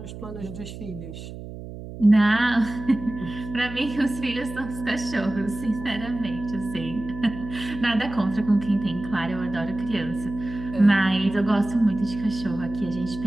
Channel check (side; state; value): right; noise; hum, 11 dB below the sound